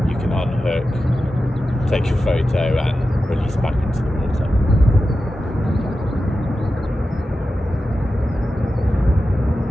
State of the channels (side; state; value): both; normal; correlation 0.92